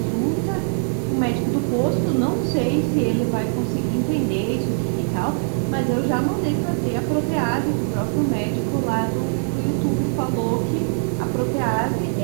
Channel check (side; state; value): left; silent; digital silence